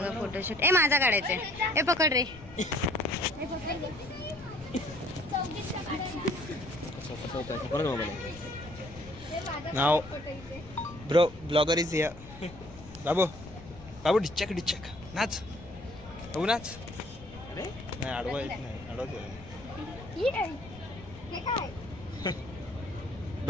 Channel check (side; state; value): left; noise; rumble, 17 dB below the sound